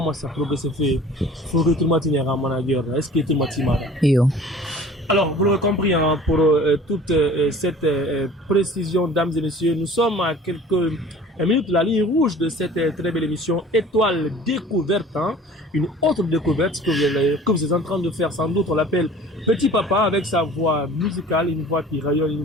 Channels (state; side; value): normal; both; correlation 0.46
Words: ça progresse fait. Faut que tout le monde ait un manager. Est-ce que tout le monde Yo. Alors, vous l'avez compris, hein, pour toute cette précision, dames et messieurs, nous sommes à quelques minutes de la ligne rouge de cette très belle émission Étoile Découverte, hein, une autre découverte que vous êtes en train de faire, sans doute, on l'appelle Petit Papa, avec sa voix musicale, une voix qui rayonne, une